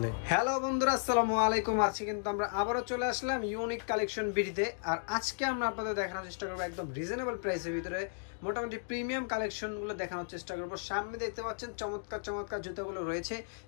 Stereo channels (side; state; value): right; silent; digital silence